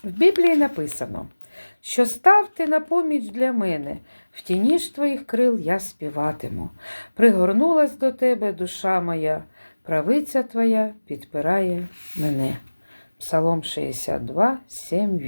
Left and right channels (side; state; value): both; inverted; correlation -1.00